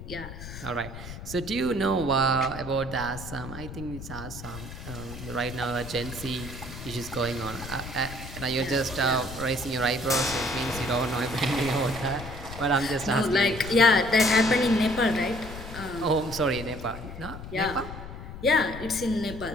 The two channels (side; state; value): left; noise; rumble, 11 dB below the sound